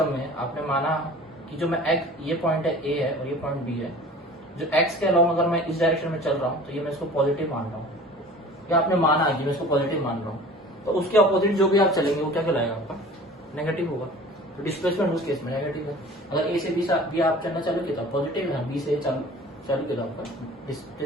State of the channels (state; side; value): normal; both; correlation 0.43